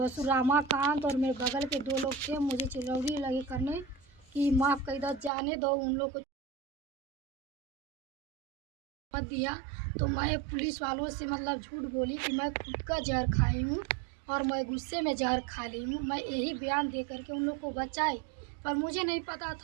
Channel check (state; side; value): drops out; left; at 5.3 s